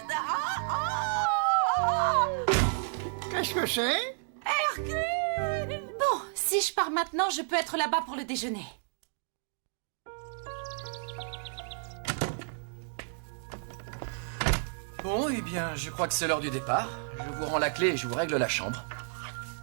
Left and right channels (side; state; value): left; silent; digital silence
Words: Qu'est-ce que c'est? Hercule. Bon, si je pars maintenant, je peux être là-bas pour le déjeuner. Bon, eh bien, je crois que c'est l'heure du départ. Je vous rends la clé et je vous règle la chambre.